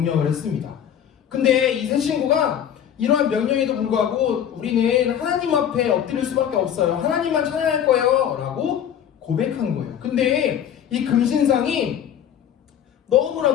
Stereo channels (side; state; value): right; quieter; 9.4 dB